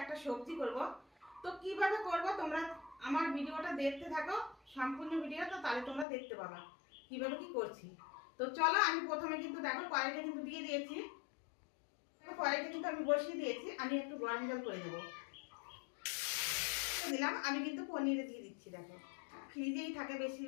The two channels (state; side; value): drops out; right; at 6.1 s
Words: একটা সবজি করব। তো কিভাবে করব তোমরা আমার ভিডিওটা দেখতে থাকো, সম্পূর্ণ ভিডিওটা, তাহলে তোমরা দেখতে পাবা কিভাবে কি করছি। তো চলো আমি প্রথমে কিন্তু দেখো কড়াইটা কিন্তু দিয়ে দিয়েছি। কড়াইটা কিন্তু আমি বসিয়ে দিয়েছি, আমি একটু গরম জল করে দেবো দিলাম। আমি কিন্তু পনিরে দিয়ে দিচ্ছি। দেখো ফ্রিজেই থাকে